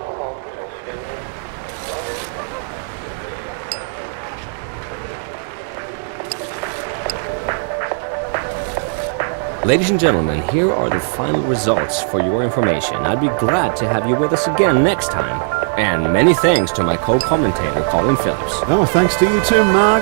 Ladies and gentlemen, here are the final results for your information. I'd be glad to have you with us again next time. And many thanks to my co-commentator, Colin Phillips. Oh, thanks to you too, Mark.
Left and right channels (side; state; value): left; silent; digital silence